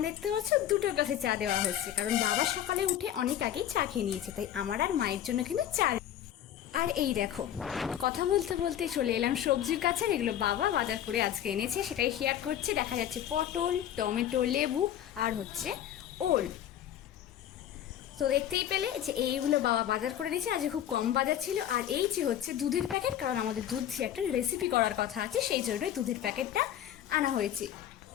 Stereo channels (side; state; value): right; quieter; 11.0 dB